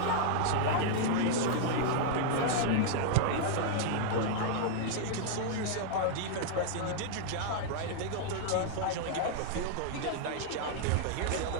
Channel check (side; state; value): both; different; correlation -0.01